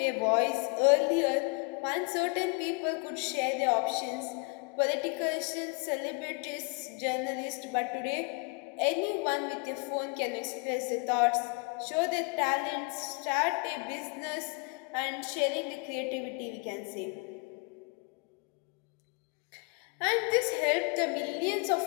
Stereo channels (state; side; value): quieter; right; 32.2 dB